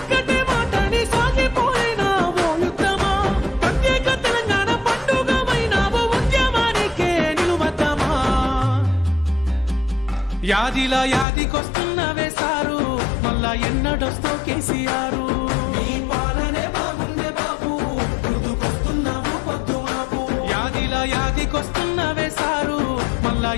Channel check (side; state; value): right; drops out; at 11.2 s